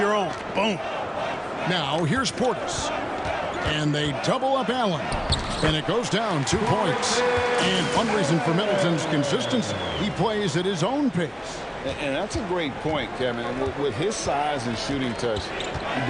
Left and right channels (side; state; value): both; identical; correlation 1.00